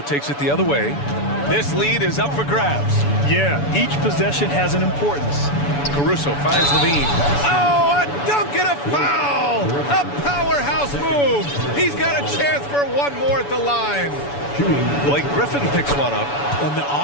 it the other way. This lead is up for grabs. Yeah, each possession has an importance. Caruso finds Levine. Oh, a dunk cross move. He's got a chance for one more at the line. Blake Griffin picks one up. On the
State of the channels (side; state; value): right; late; 7.0 ms